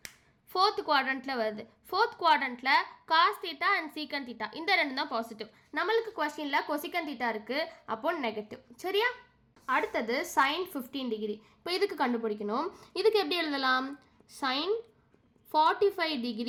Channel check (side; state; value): both; identical; correlation 1.00